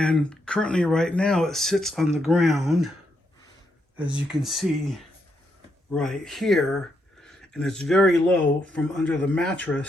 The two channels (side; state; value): both; normal; correlation 0.79